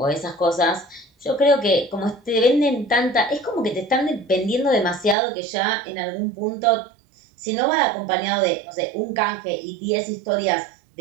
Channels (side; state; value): left; drops out; at 5.2 s